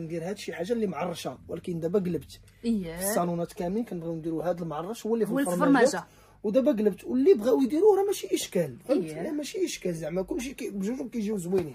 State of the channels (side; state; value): both; identical; correlation 1.00